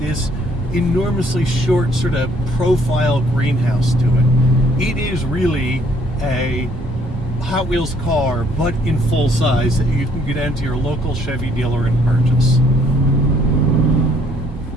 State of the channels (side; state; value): both; normal; correlation 0.63